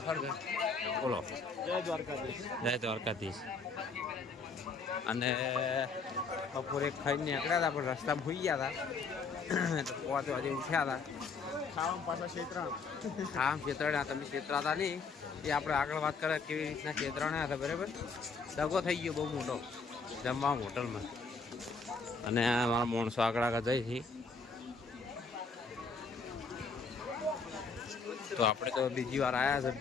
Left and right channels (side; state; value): right; quieter; 4.6 dB